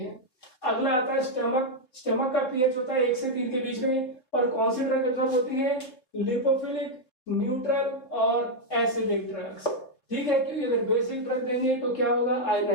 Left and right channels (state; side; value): late; right; 3.5 ms